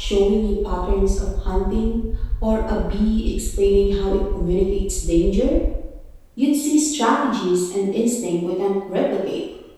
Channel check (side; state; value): both; identical; correlation 1.00